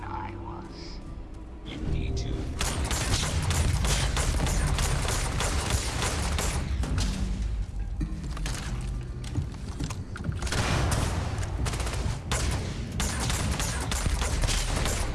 I was. You need to.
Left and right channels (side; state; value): both; identical; correlation 1.00